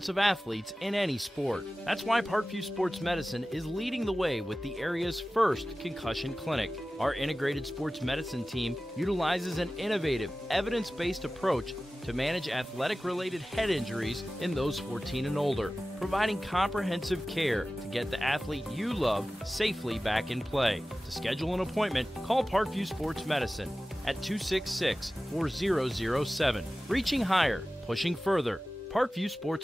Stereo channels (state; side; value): normal; both; correlation 0.96